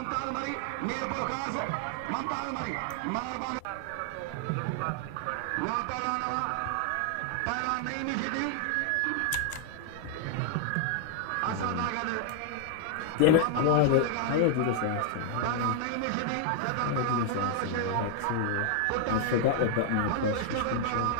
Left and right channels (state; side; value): different; both; correlation 0.00